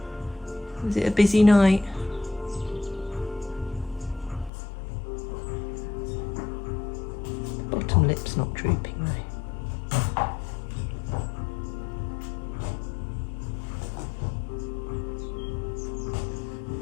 Was it a busy night? The bottom lip's not drooping though.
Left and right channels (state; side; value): drops out; right; at 4.5 s